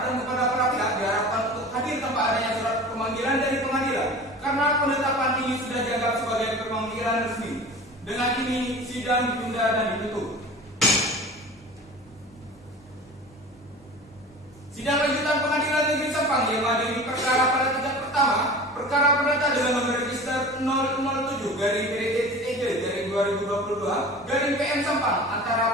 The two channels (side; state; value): both; normal; correlation 0.37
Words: kepada para pihak diharapkan untuk hadir tanpa adanya surat pemanggilan dari pengadilan karena penetapan ini sudah dianggap sebagai pemanggilan resmi. Dengan ini sidang ditunda dan ditutup. Sidang lanjutan Pengadilan Negeri Sampang yang mengadili perkara pada tingkat pertama, perkara perdata dengan nomor register 007/PDT-2022/PM Sampang